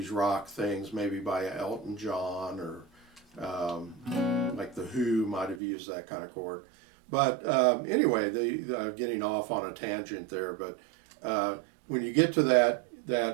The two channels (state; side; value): drops out; left; at 5.6 s